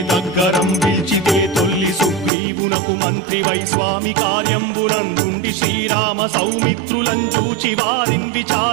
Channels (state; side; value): drops out; left; at 2.3 s